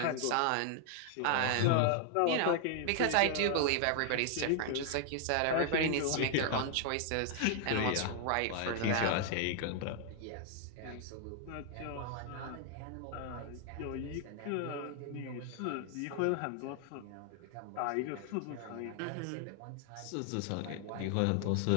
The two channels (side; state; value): both; different; correlation 0.00